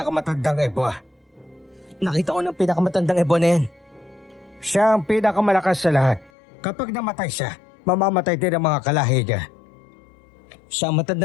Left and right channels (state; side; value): drops out; right; at 6.3 s